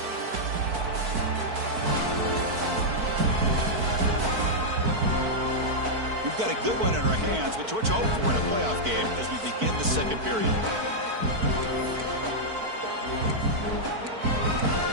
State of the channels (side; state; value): left; late; 4.5 ms